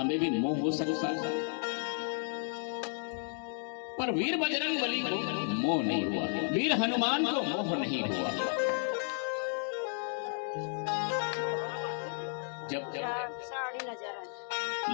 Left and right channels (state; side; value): silent; right; 56 dB below the other